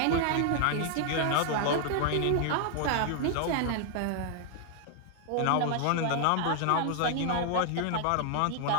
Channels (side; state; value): both; different; correlation 0.00